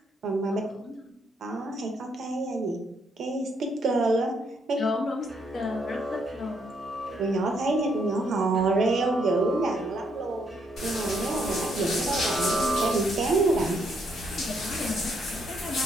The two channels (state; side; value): normal; both; correlation 0.73